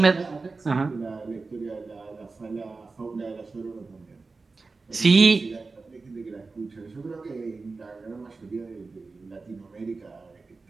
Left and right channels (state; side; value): quieter; left; 4.0 dB